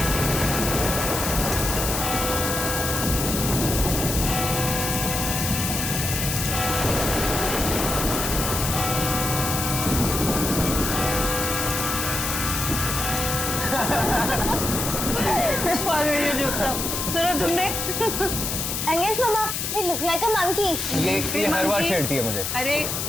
सुना तुमने? अंगेज मामा, ये लुक लाइक अ मंकी। ये हर बार छेड़ती है मुझे। अरे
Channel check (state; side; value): noise; left; hiss, 2 dB below the sound